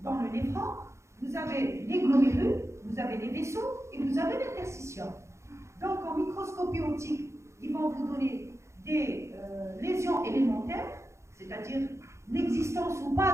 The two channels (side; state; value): left; late; 0.14 ms